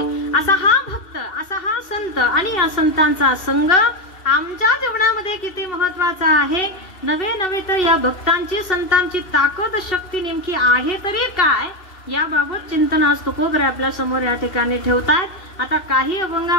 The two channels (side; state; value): right; late; 2.7 ms